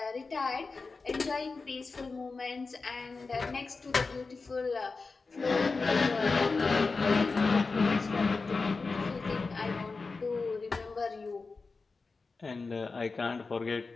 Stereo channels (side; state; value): right; quieter; 4.1 dB